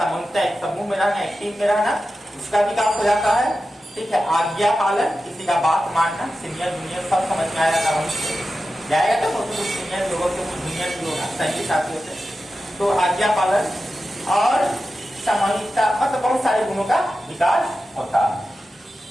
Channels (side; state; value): both; normal; correlation 0.92